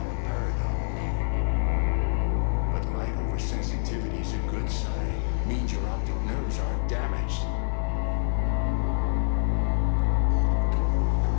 But light oversensitivity is a good sign. Means your optic nerves aren't damaged.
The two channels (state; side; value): silent; right; 61 dB below the other